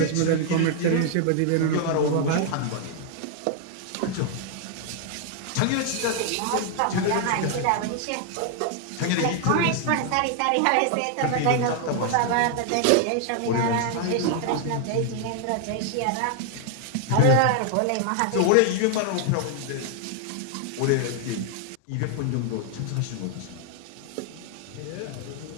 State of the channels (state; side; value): different; both; correlation 0.00